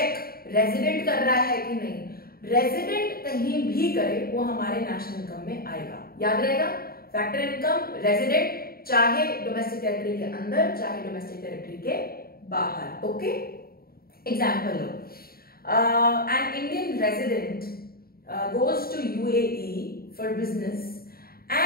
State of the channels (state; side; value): late; right; 0.44 ms